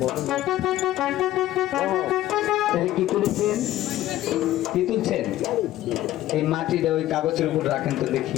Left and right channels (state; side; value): quieter; right; 14.5 dB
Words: তাহলে কি তুলেছেন? কি তুলছেন? এই মাটিটা ওই কাগজের উপর রাখেন তো